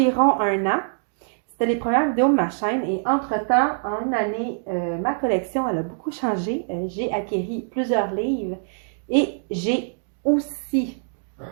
un an. C'était les premières vidéos de ma chaîne et entre-temps, en une année, ma collection elle a beaucoup changé. J'ai acquéri plusieurs livres et j'ai aussi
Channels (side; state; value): left; silent; digital silence